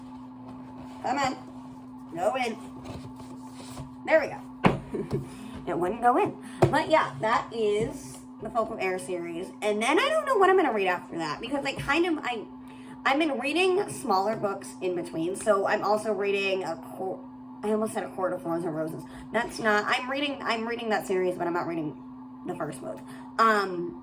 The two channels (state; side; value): identical; both; correlation 1.00